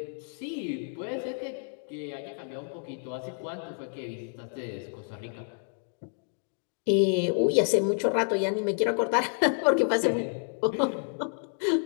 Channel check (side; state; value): right; silent; 58 dB below the other